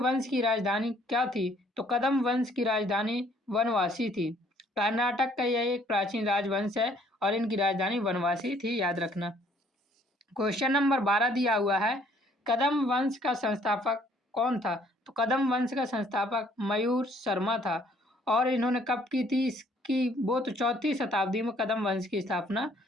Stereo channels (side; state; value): both; normal; correlation 0.62